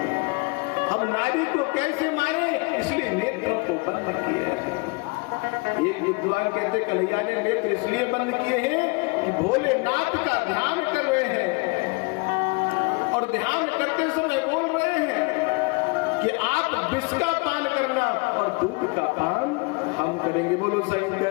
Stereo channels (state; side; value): quieter; right; 28.8 dB